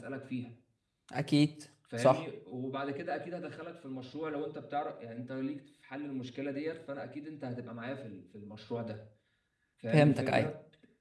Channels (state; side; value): identical; both; correlation 1.00